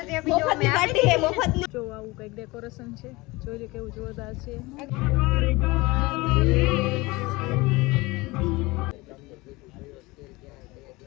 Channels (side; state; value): right; quieter; 22.5 dB